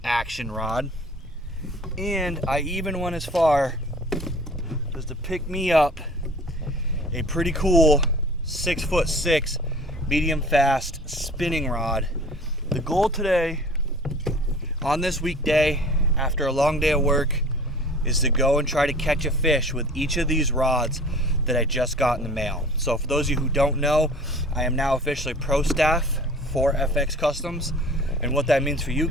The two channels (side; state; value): both; normal; correlation 0.45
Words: Action Rod. And I even went as far as to pick me up a pretty cool 6'6" medium fast spinning rod. The goal today on this weekday after a long day of work is to go and try to catch a fish with each of these rods that I just got in the mail. So for those of you who don't know, I am now officially pro staff for FX Customs, and what that means for you